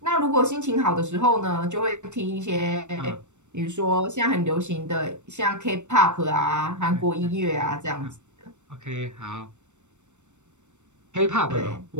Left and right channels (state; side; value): late; left; 0.84 ms